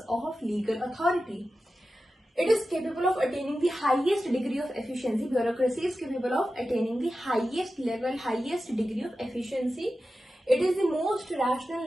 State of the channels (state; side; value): normal; both; correlation 0.93